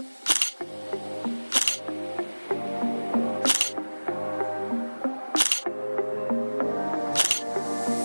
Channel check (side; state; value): both; inverted; correlation -1.00